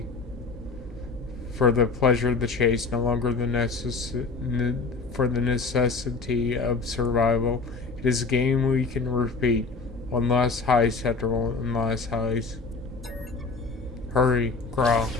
for the pleasure of the chase, no longer for the necessity of survival. It is a game we can repeat. One last heist after one last heist. Hurry, crawl.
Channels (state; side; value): quieter; right; 4.2 dB